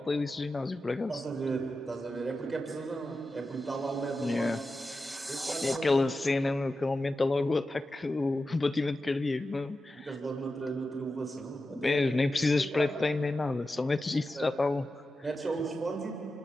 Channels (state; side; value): normal; both; correlation 0.92